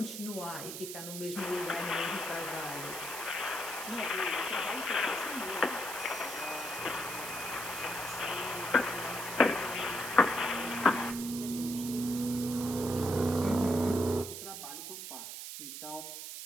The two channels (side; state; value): right; noise; hiss, 8 dB below the sound